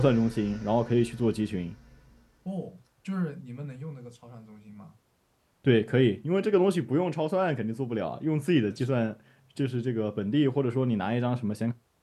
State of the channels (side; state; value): both; identical; correlation 1.00